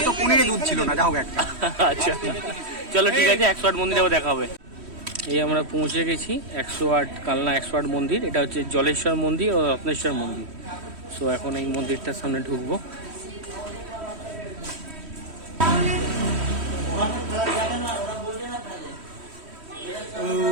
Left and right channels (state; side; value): late; left; 3.1 ms